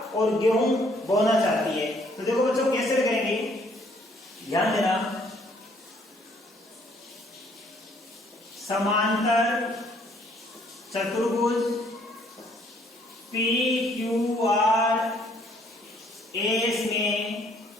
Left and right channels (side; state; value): both; normal; correlation 0.64